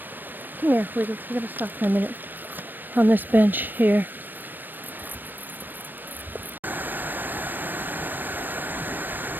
Come here, we're going to stop for a minute on this bench here.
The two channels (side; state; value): left; late; 0.092 ms